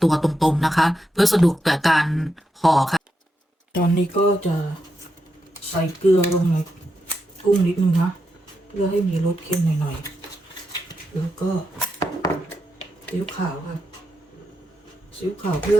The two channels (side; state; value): both; normal; correlation 0.85